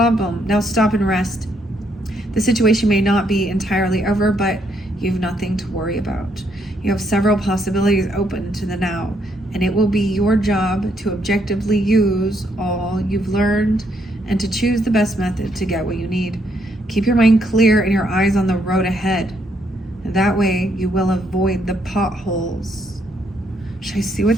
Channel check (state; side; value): normal; both; correlation 0.73